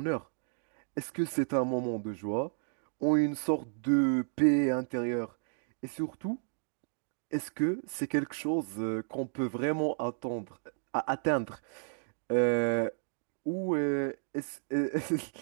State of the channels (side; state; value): left; silent; digital silence